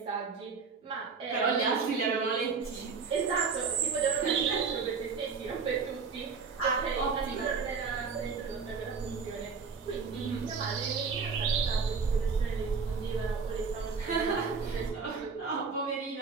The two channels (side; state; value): left; quieter; 5.3 dB